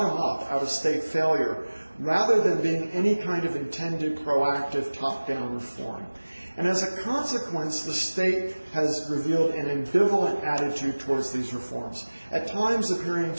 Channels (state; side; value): inverted; both; correlation -1.00